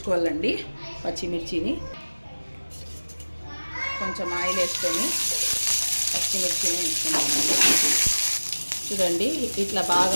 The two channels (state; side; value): inverted; both; correlation -1.00